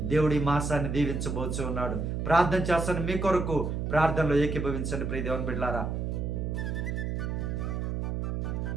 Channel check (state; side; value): noise; right; hum, 2 dB below the sound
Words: దేవుడు ఈ మాసాన్ని దీవించబోచు ఉన్నాడు. ప్రార్థన చేస్తాను మీ కొరకు. ప్రార్థనలో ఏకీభవించండి ప్రియ దేవుని బిడ్డలారా.